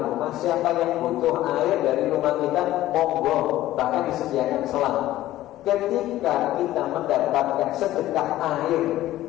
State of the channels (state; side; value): quieter; right; 14.8 dB